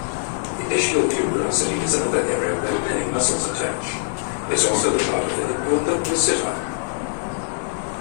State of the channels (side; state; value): right; silent; 63 dB below the other